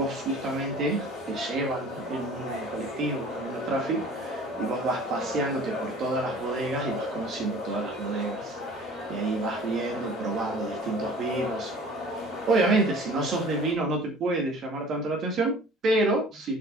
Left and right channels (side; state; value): both; normal; correlation 0.46